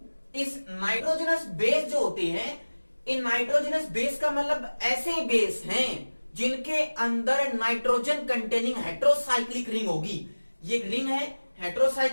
इस नाइट्रोजनस बेस जो होते हैं, इन नाइट्रोजनस बेस का मतलब ऐसे बेस हैं जिनके अंदर नाइट्रोजन कंटेनिंग हेट्रोसाइक्लिक रिंग होगी। ये रिंग है,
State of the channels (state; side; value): inverted; both; correlation -1.00